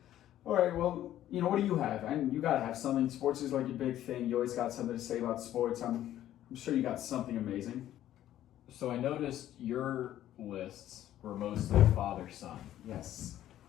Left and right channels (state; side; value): quieter; right; 12.5 dB